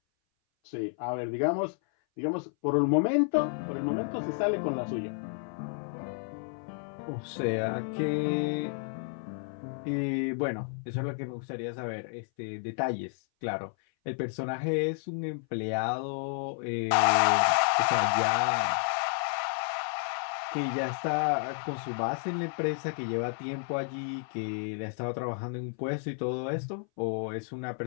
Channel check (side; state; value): right; silent; 57 dB below the other